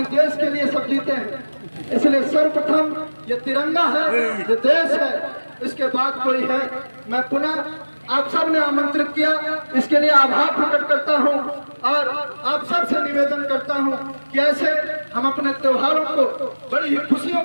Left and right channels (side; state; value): both; inverted; correlation -1.00